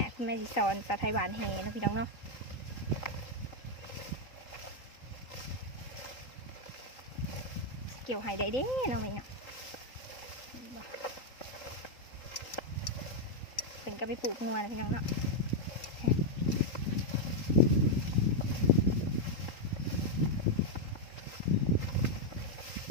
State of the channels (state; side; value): late; right; 3.8 ms